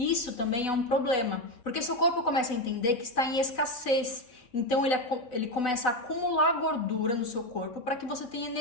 também é um problema, porque seu corpo começa a entender que está em escassez. Então ele começa a acumular gordura no seu corpo para que você tenha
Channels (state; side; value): late; right; 4.0 ms